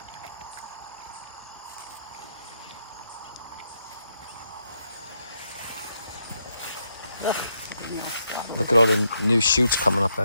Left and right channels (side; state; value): both; inverted; correlation -0.79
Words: Look at all the new shoots coming up